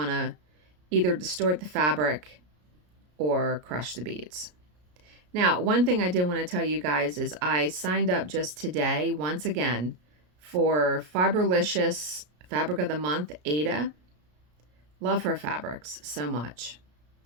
to either distort the fabric or crush the beads. Now, one thing I did want to tell you guys is I signed up just today, once again, for Fiberlicious Fabric of the Month, Aida. Love her fabrics so much.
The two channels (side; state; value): left; late; 33 ms